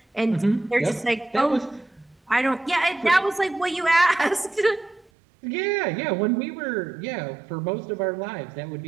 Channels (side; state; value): left; drops out; at 5.1 s